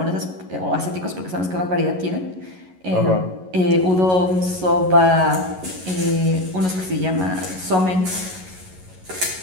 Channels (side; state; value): left; late; 11 ms